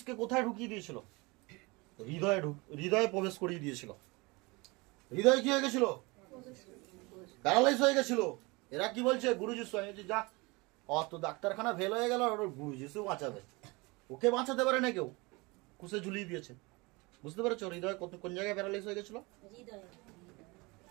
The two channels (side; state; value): left; quieter; 25.4 dB